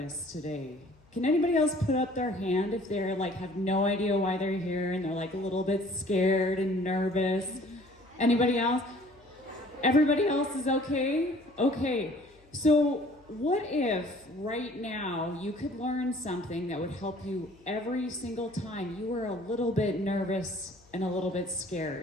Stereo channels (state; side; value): noise; left; hum, 29 dB below the sound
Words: today. Can anybody else put up their hand if they're like have no idea why they're here and they're like a little bit scared and nervous? Anybody else? Everybody else is okay? Okay. So what if right now you could learn something that would help you every single time you were a little bit nervous and a little bit